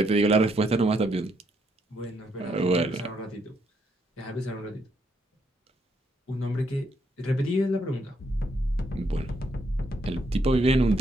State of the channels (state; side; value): normal; both; correlation 0.74